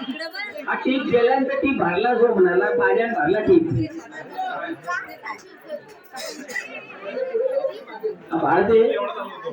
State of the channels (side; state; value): both; identical; correlation 1.00